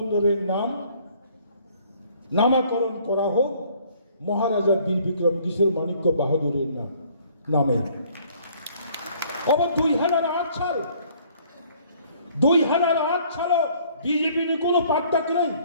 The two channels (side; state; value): both; inverted; correlation -0.59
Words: নামকরণ করা হোক মহারাজা বীর বিক্রম কিশোর মাণিক্য বাহাদুরের নামে। আবার 2008 সাল 2008 সালে বিজেপির কোনো পার্থক্য নেই।